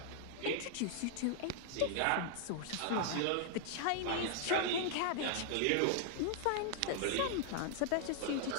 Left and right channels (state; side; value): different; both; correlation 0.00